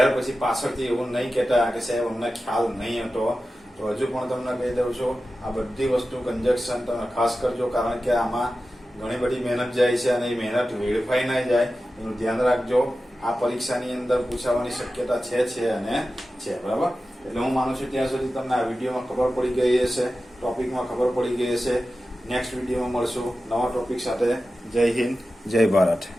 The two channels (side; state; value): both; normal; correlation 0.93